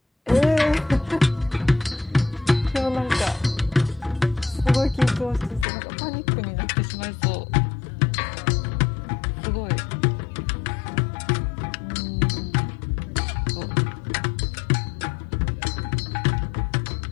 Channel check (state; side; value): drops out; right; at 5.7 s